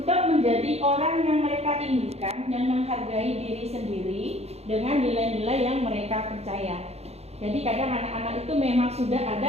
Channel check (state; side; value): late; left; 0.30 ms